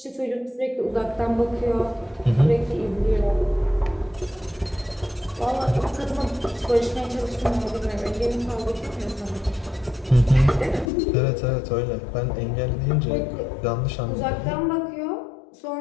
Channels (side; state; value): right; drops out; at 10.9 s